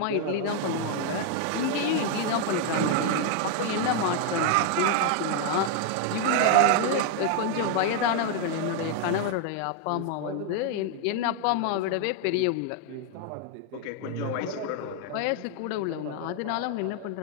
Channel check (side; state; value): both; different; correlation 0.00